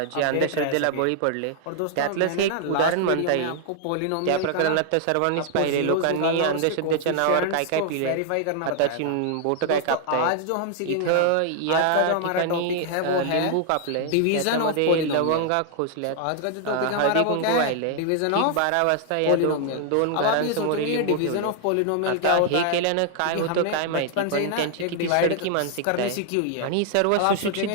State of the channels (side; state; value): both; different; correlation 0.00